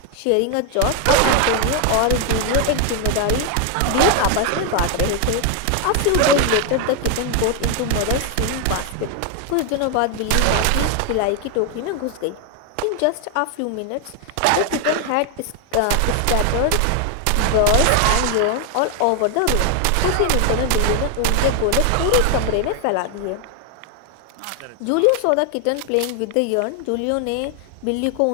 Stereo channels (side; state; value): both; different; correlation 0.01